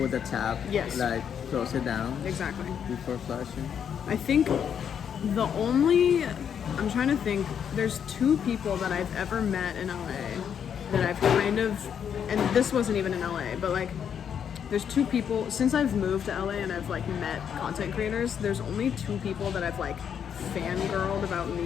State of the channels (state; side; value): quieter; right; 8.1 dB